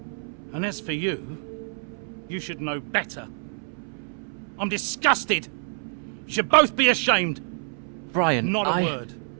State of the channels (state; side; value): silent; left; 61 dB below the other